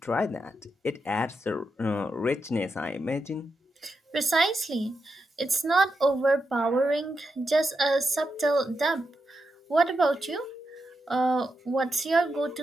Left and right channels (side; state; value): both; normal; correlation 0.85